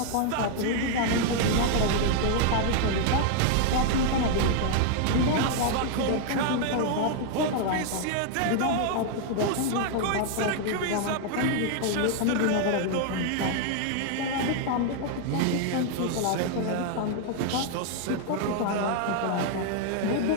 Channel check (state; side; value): different; both; correlation 0.00